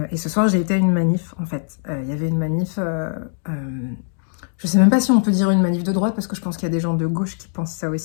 et ce soir j'ai été à une manif en fait. Il y avait une manif, je sais même pas si on peut dire une manif de droite parce que je pense qu'il y a des gens de gauche qui pensent ça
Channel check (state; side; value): silent; right; digital silence